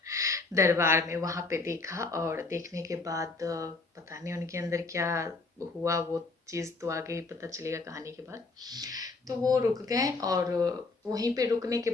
दरबार में, वहाँ पे देखा, और देखने के बाद पता नहीं उनके अंदर क्या हुआ, वो चीज़ तो आगे ही पता चलेगा कहानी के बाद। तो वो रुक गए, और वहीं पे रुकने के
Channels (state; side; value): quieter; right; 3.6 dB